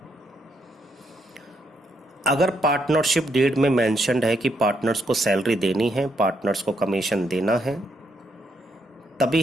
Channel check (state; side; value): normal; both; correlation 0.76